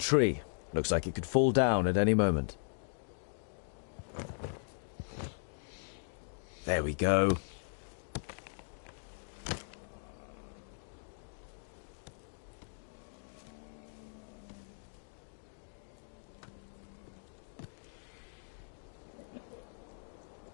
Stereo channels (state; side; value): silent; right; digital silence